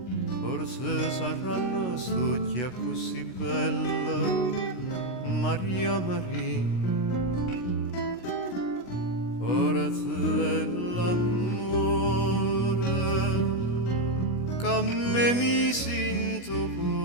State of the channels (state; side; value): late; right; 16 ms